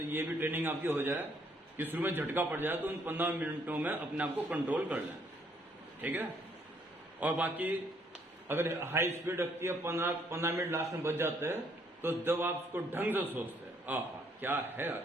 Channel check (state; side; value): normal; both; correlation 0.67